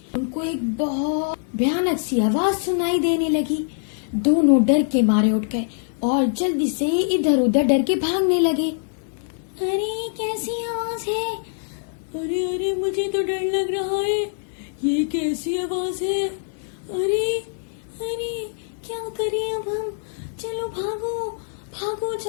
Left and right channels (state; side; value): silent; right; digital silence